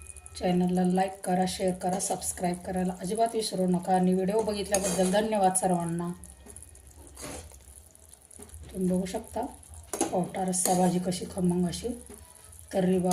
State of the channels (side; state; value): both; identical; correlation 1.00